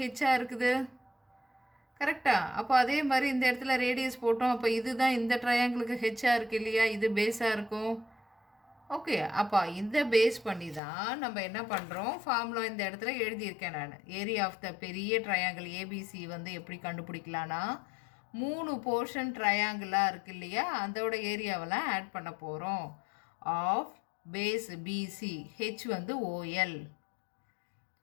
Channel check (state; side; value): drops out; right; at 10.8 s